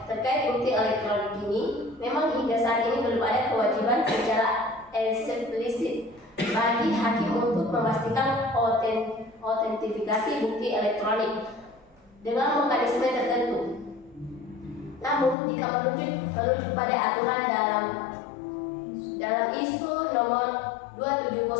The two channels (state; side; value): drops out; right; at 15.4 s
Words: bukti elektronik ini, memang hingga saat ini belum ada kewajiban secara eksplisit bagi hakim untuk memastikan autentifikasi bukti elektronik dengan mekanisme tertentu. Namun, jika merujuk pada aturan dalam ISO nomor